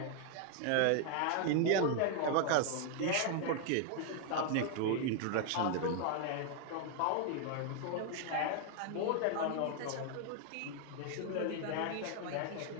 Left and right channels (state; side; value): different; both; correlation 0.00